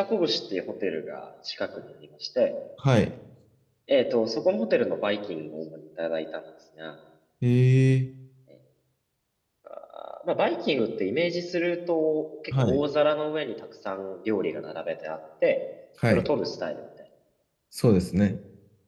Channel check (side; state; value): both; identical; correlation 1.00